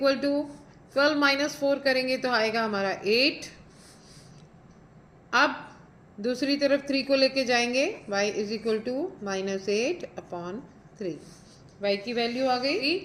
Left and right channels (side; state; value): both; identical; correlation 1.00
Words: to 12 minus 4 करेंगे तो आएगा हमारा 8। अब दूसरी तरफ 3 को लेके जाएंगे, y is equal to -8/3। y की वैल्यू आ गई।